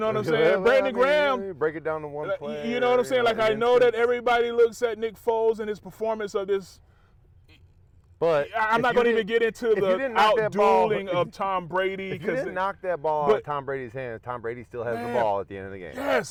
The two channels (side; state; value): both; identical; correlation 1.00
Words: what I'm saying? Brandon Graham. Break it down to one play. You know what I'm saying? Like, I know that everybody looks at Nick Foles and his performance of this. But I'm not going to even get into the out-dueling of Tom Brady. If you didn't knock that ball out of Tom Brady's hand, Tom Brady still has the ball at the end of the game.